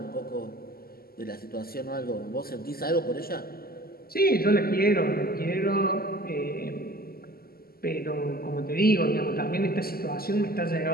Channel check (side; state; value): right; late; 0.44 ms